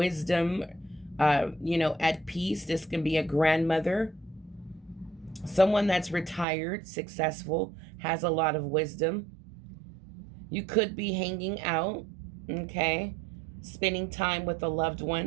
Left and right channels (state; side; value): drops out; left; at 6.5 s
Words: at peace. This can be a grandmother, someone that's retired, successful, has a lot of wisdom. You could be hanging out, okay, spending time with a loved